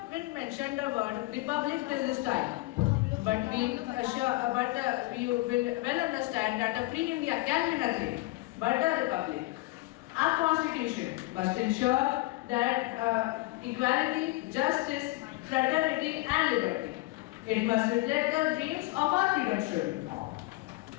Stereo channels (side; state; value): right; quieter; 20.7 dB